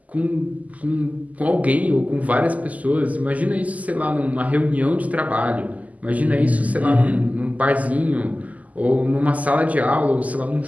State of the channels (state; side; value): late; left; 0.075 ms